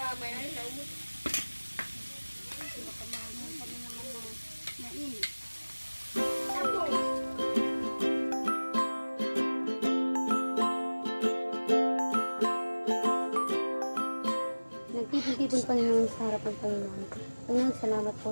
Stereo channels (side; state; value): both; inverted; correlation -1.00